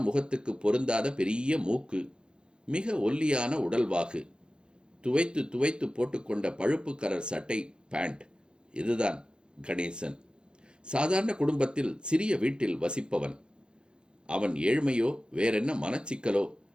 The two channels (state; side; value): late; left; 0.051 ms